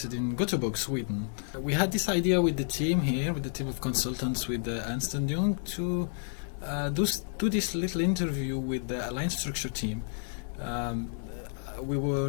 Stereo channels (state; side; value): silent; right; digital silence